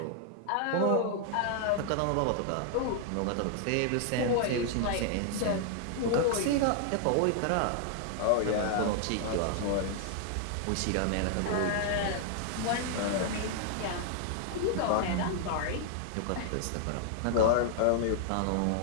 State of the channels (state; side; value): different; both; correlation 0.00